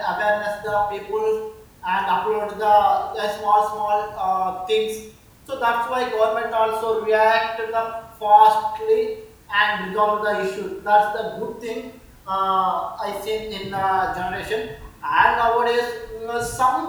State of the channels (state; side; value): identical; both; correlation 1.00